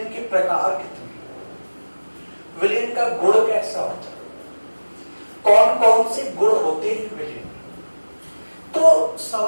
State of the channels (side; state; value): both; inverted; correlation -1.00